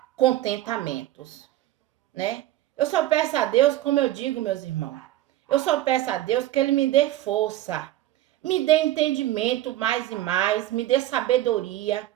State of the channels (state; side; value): quieter; left; 14.5 dB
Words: contentamento, né? Eu só peço a Deus, como eu digo, meus irmãos, eu só peço a Deus que Ele me dê força, me dê entendimento mais e mais, me dê sabedoria